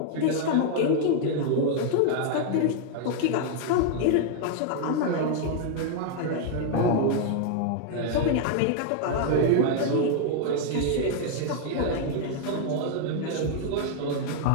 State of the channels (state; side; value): different; both; correlation 0.00